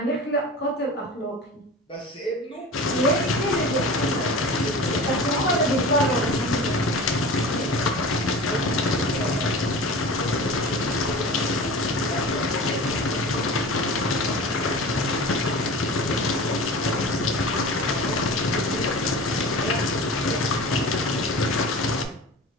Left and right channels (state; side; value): normal; both; correlation 0.35